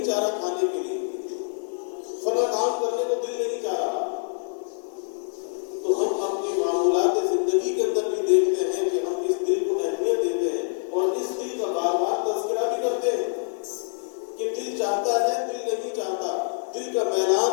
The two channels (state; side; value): silent; right; digital silence